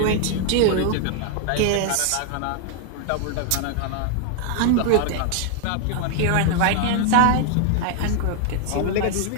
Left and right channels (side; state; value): both; different; correlation 0.00